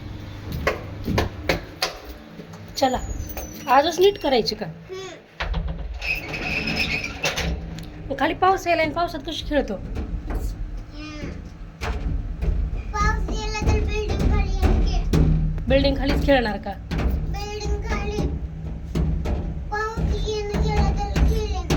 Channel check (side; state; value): both; identical; correlation 1.00